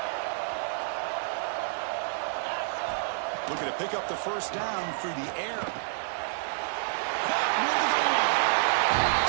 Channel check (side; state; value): left; silent; digital silence